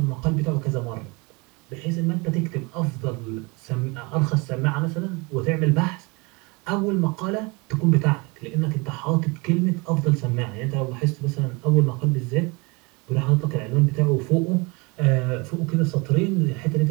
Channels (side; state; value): left; quieter; 27.6 dB